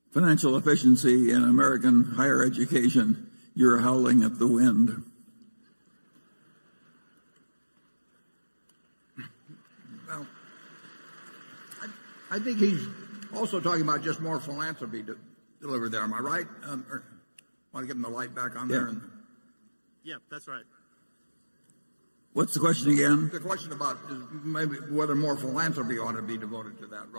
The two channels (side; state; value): both; inverted; correlation -1.00